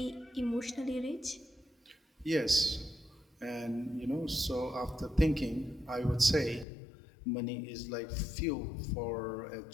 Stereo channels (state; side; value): drops out; right; at 6.7 s